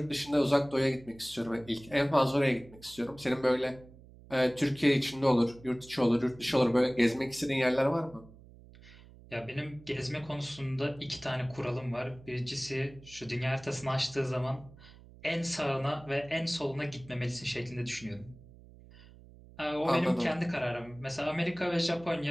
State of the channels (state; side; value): noise; right; hum, 21 dB below the sound